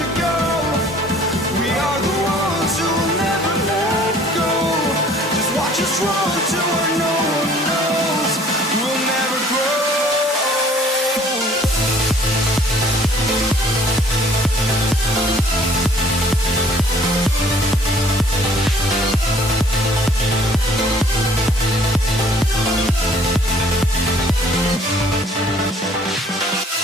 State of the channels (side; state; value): both; normal; correlation 0.56